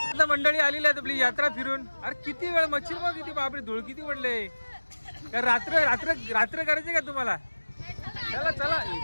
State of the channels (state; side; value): inverted; both; correlation -1.00